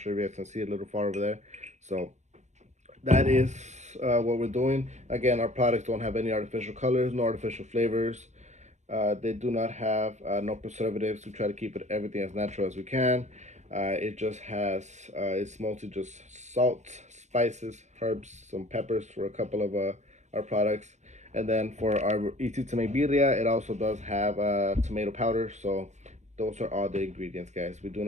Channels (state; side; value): late; left; 0.34 ms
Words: if you guys can see it a little far over there. So that is what we're doing. Again, our products don't have any artificial colors, no artificial flavors. They do not have no preservatives. We try to keep it everything as natural as we can. It just has, it's mostly just salt, spices, herbs, some peppers for a couple of our products. And then for our easy to make birria, it also does have tomato powder. So those are all the ingredients, guys. We do